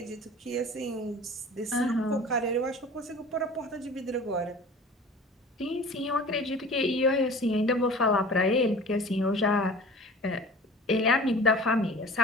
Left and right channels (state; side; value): normal; both; correlation 0.42